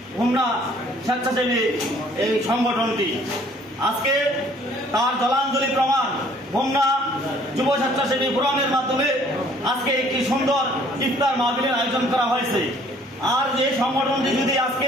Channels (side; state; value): both; normal; correlation 0.58